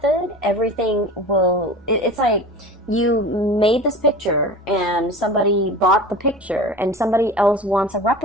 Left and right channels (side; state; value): both; normal; correlation 0.35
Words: everything will, it's like you made this picture and somebody bought the picture and somebody else wants a